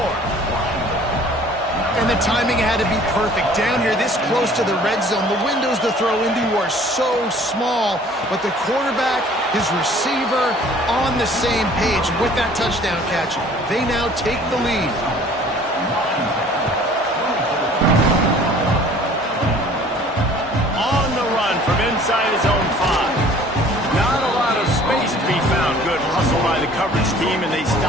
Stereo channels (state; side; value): normal; both; correlation 0.52